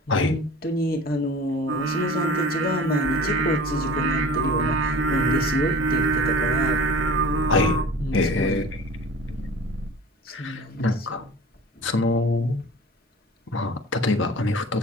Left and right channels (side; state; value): both; normal; correlation 0.41